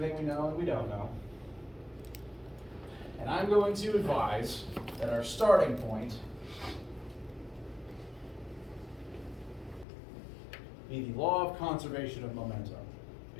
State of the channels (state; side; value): drops out; right; at 9.9 s